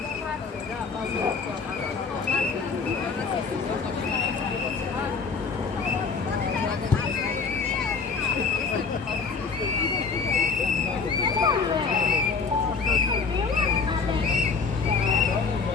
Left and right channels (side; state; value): right; quieter; 4.9 dB